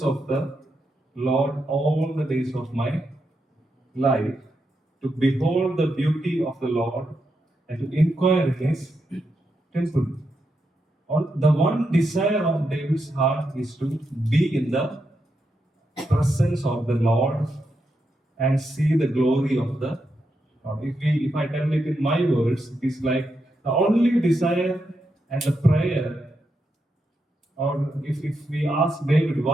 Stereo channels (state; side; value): normal; both; correlation 0.84